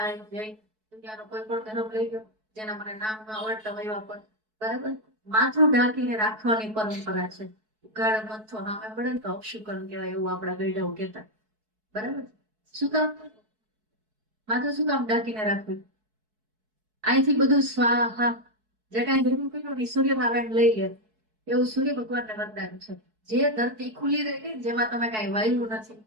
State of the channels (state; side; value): late; left; 4.6 ms